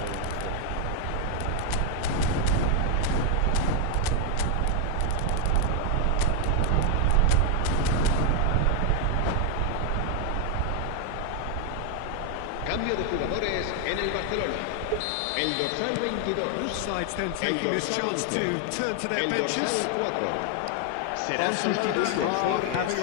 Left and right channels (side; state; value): both; different; correlation 0.00